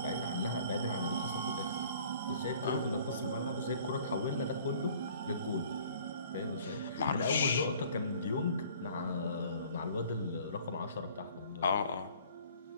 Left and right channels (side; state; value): both; inverted; correlation -0.53